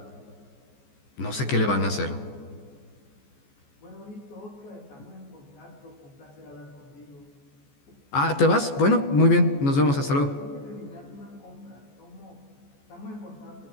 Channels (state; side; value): late; right; 14 ms